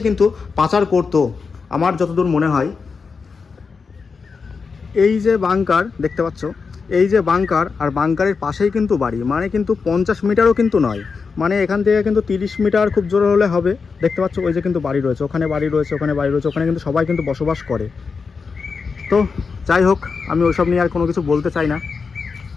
কিন্তু পাচার করতো আমার যতদূর মনে হয়। এই যে বাংকার দেখতে পাচ্ছ, এই যে বাংকার, আর বাংকারের পাশেই কিন্তু বাড়ি, মানে কিন্তু 50 মিটারও কিন্তু নয়, মানে এখান থেকে কিন্তু 30 মিটার খুব জোর হলে হবে। দেখতে পাচ্ছ ওই যে কিন্তু বাড়ি রয়েছে, ওখানে বাড়ি রয়েছে, ওখানে বাড়ি রয়েছে, ওখানে কিন্তু সবাই কিন্তু বসবাস করে। তো যাই হোক, আমি ওইসব নিয়ে আর কোনো কিছু বলতে চাই না।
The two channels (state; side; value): quieter; right; 5.1 dB